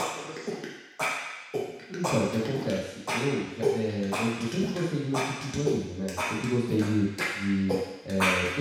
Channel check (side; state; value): both; identical; correlation 1.00